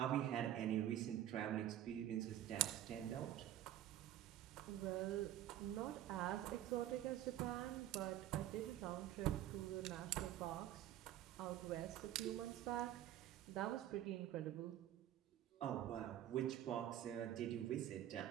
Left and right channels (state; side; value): quieter; left; 12.3 dB